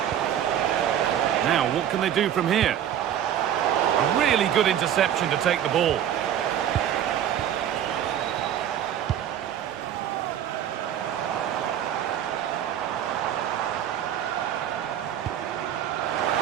Now, what can they do from here? A really good interception to take the ball.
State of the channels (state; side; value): quieter; left; 10.3 dB